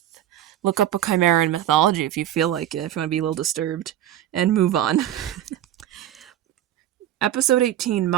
look up a chimera in mythology if you feel like it, if you want to be a little disturbed, and move on. Episode 18,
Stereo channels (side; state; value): left; quieter; 12.0 dB